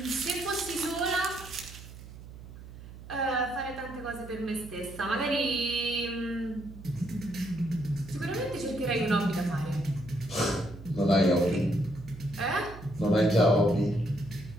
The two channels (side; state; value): right; noise; hum, 15 dB below the sound